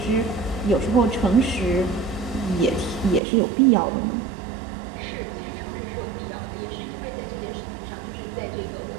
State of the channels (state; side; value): drops out; left; at 3.2 s